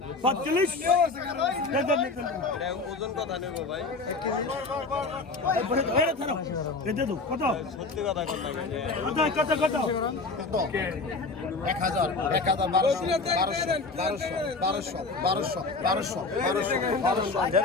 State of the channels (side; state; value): right; quieter; 3.7 dB